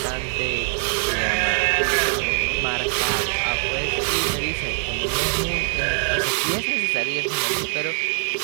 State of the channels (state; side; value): silent; left; 64 dB below the other